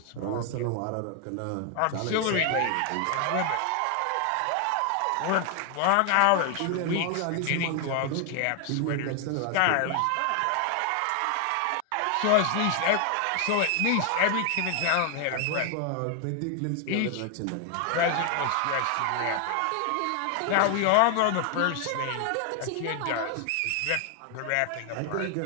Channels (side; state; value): both; different; correlation 0.00